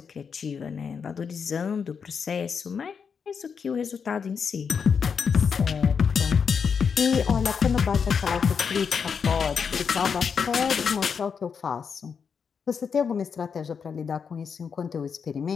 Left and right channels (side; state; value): right; quieter; 6.3 dB